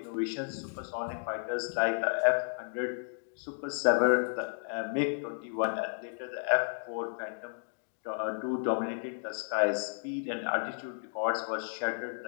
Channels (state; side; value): silent; right; digital silence